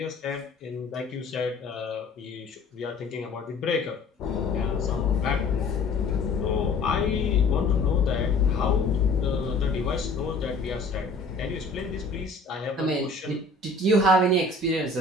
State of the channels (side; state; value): right; quieter; 3.4 dB